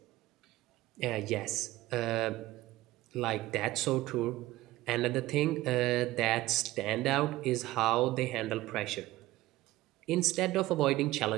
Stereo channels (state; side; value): quieter; left; 17.2 dB